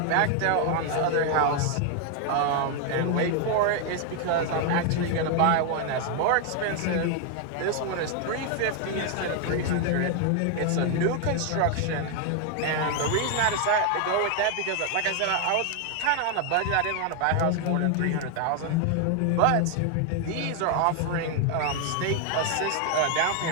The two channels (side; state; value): both; different; correlation 0.01